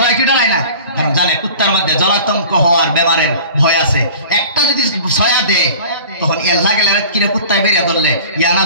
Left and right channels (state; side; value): inverted; both; correlation -0.43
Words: কি ডরাই না? কারণ জানে কুত্তার মধ্যে জলাতঙ্ক হওয়ার বেমারের ভয় আছে। একটা যদি ছয়া দেয়, তখন এল্লা গেলে কিরে কুত্তায় বেরিয়ে ধরলে